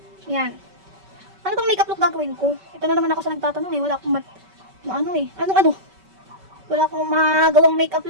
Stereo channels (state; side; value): late; left; 5.2 ms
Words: Yan. Ano tong makeup look gagawin ko? Ito na naman ako sa nagtatanong eh. Wala akong wala akong magawang makeup